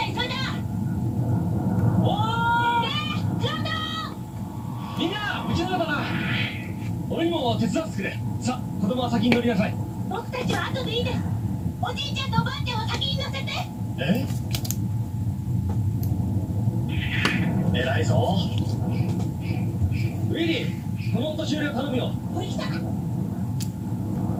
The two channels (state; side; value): identical; both; correlation 1.00